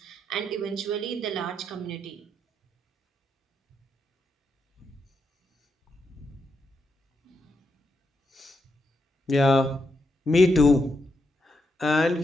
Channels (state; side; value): normal; both; correlation 0.83